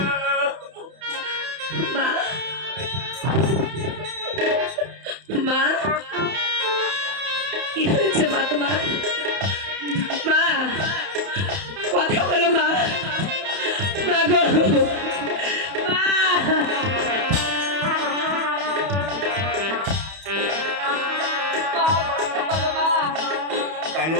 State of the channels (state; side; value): late; left; 31 ms